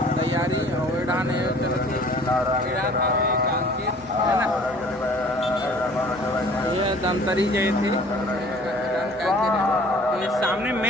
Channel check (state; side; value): normal; both; correlation 0.51